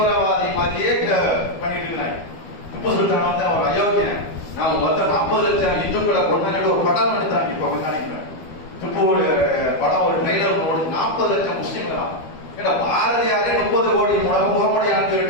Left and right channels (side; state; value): right; late; 12 ms